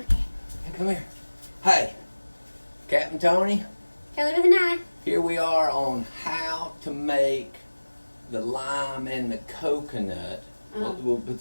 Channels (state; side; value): inverted; both; correlation -1.00